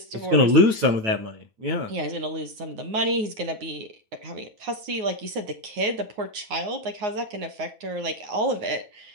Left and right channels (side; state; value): left; late; 9.5 ms